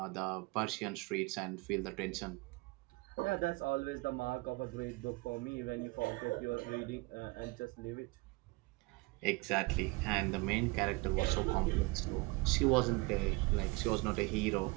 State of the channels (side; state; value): left; quieter; 24.7 dB